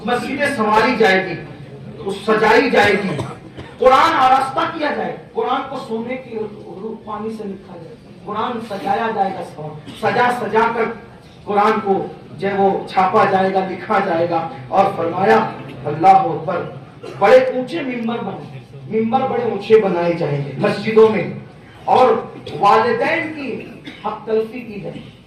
مسجدیں سنواری جائے گی, سجائی جائے گی, قرآن آراستہ کیا جائے, قرآن کو سونے کی روح پانی سے لکھا جائے, قرآن سجایا جائے گا, سجا کر قرآن کو جو وہ چھاپا جائے گا, لکھا جائے گا. اور فرمایا اللہ اکبر, بڑے اونچے ممبر بڑے اونچے بنائے جائیں گے مسجدوں میں. اور والدین کی حق تلفی کی جائے.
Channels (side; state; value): both; identical; correlation 1.00